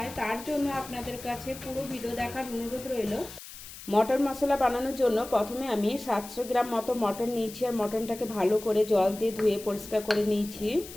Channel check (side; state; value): left; noise; hiss, 14 dB below the sound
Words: তার জন্য আপনাদের কাছে পুরো ভিডিও দেখার অনুরোধ রইল। মটন মশলা বানানোর জন্য প্রথমে আমি 700 গ্রাম মতো মটন নিয়েছি। আর মটনটাকে ভালো করে জল দিয়ে ধুয়ে পরিষ্কার করে নিয়েছি।